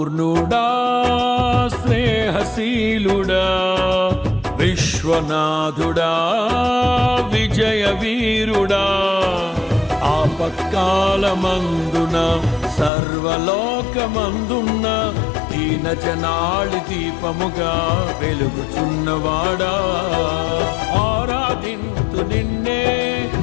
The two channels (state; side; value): drops out; right; at 12.9 s